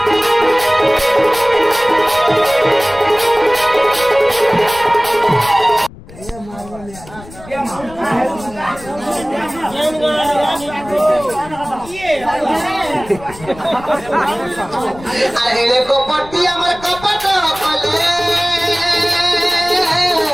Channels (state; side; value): noise; left; rumble, 18 dB below the sound